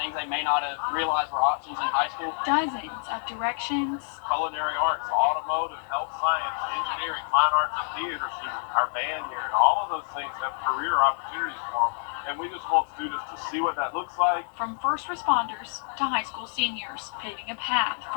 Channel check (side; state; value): right; silent; 60 dB below the other